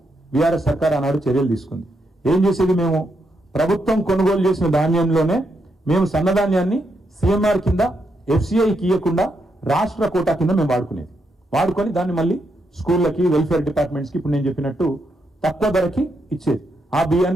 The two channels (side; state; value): both; normal; correlation 0.80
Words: బీఆర్ఎస్ సర్కార్ ఆనాడు చర్యలు తీసుకుంది. ఏం చేసేది, మేము ప్రభుత్వం కొనుగోలు చేసిన ధాన్యంలోనే మేము సన్నధాన్యాన్ని సిఎంఆర్ కింద ఎఫ్సిఐకి ఇవ్వకుండా రాష్ట్ర కోటా కింద మేము వాడుకొని దాన్ని మళ్ళీ స్కూళ్ళకి, వెల్ఫేర్ డిపార్ట్మెంట్స్కి ఇప్పుడు నేను చెప్పినట్టు తక్కువ ధరకి ఇచ్చేది. ఆ